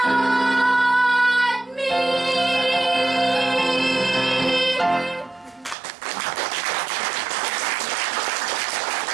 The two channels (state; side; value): drops out; left; at 5.8 s